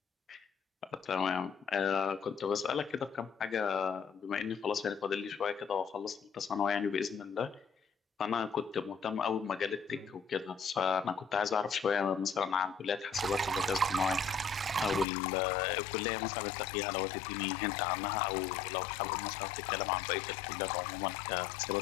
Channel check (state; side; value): drops out; right; at 15.1 s